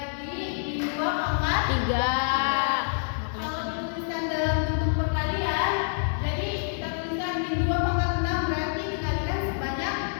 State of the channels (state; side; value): silent; right; digital silence